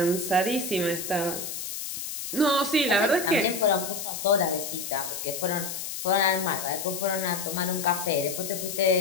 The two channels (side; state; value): left; noise; hiss, 6 dB below the sound